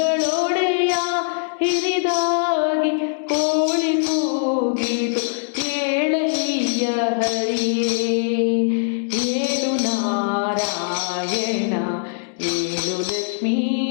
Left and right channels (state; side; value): silent; right; digital silence